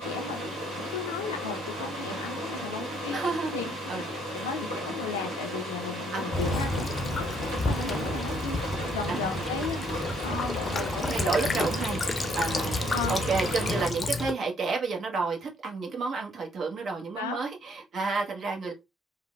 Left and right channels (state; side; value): normal; both; correlation 0.66